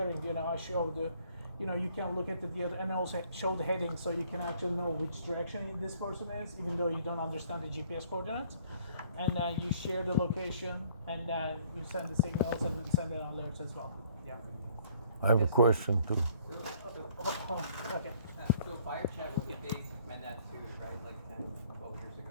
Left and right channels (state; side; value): inverted; both; correlation -0.60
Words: I show the, you can look at the other and also show the heading so you can actually know which direction this person is, even though you don't understand the GPS coordinates. And then you share the location and then you send the signals and send the alerts as well. Yeah. I have a question too. Okay. So fire chat was a big mandatory, right? Like 10, 12 years